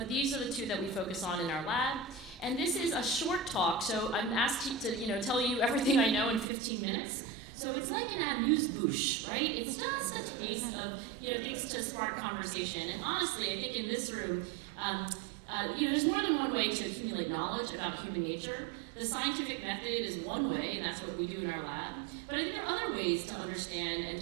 these are the 2 that we focus on in our lab. And this is a short talk, so I'm asked to tell you everything I know in 15 minutes. So it's like an amuse-bouche, right? It's just a taste of things to spark conversation. And honestly, I think in this room, there's more than one way to accumulate knowledge about human nature. The scientific method is one way, and that's what we do in our lab. But I think there are other ways to understand and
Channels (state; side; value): drops out; left; at 6.5 s